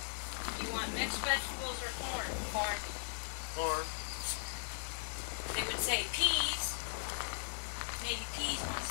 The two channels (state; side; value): silent; right; digital silence